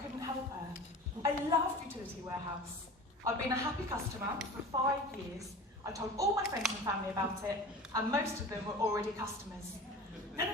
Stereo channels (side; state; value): both; normal; correlation 0.36